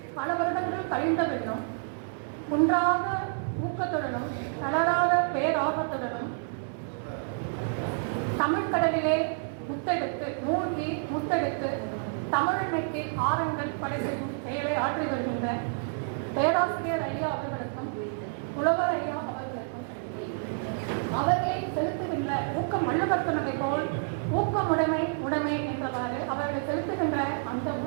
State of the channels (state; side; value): silent; left; digital silence